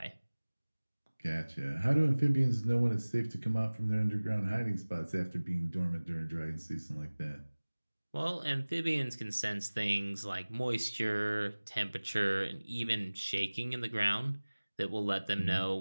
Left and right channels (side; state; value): both; inverted; correlation -1.00